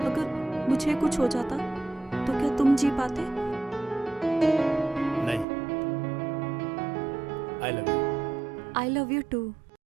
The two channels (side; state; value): left; drops out; at 5.5 s